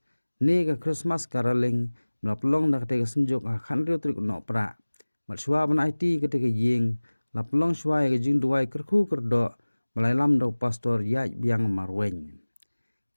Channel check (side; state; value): both; inverted; correlation -1.00